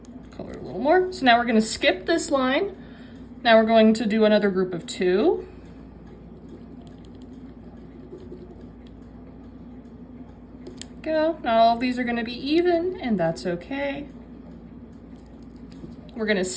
Color a little more. So now we're gonna skip this line. Now we're going to do another group of 2. Go. Not all of these are gonna be even, and that's okay. We're gonna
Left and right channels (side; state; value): both; identical; correlation 1.00